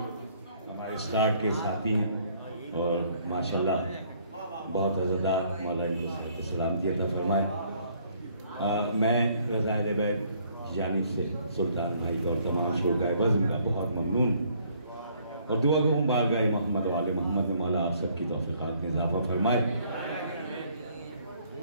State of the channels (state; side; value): inverted; both; correlation -0.63